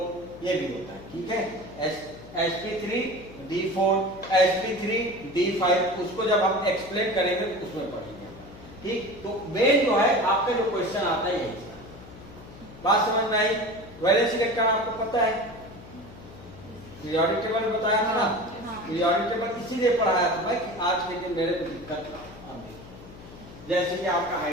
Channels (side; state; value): left; noise; hum, 17 dB below the sound